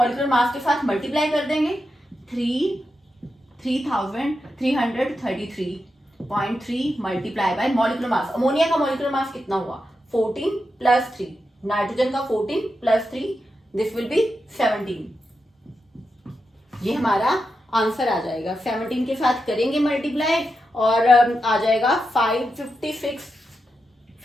मास के साथ मल्टीप्लाई कर देंगे, 3333.3 multiply by molecular mass. Ammonia का मॉलिक्यूलर मास कितना हुआ, 14 प्लस 3, नाइट्रोजन का 14 प्लस 3, दिस विल बी 17। ये हमारा आंसर आ जाएगा, 17 के साथ करेंगे मल्टीप्लाई और आ जाएगा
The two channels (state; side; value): normal; both; correlation 0.87